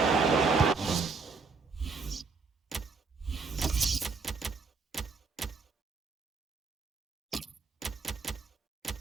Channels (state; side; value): quieter; left; 4.5 dB